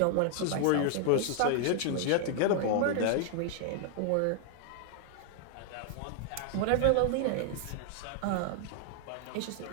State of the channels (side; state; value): both; different; correlation 0.00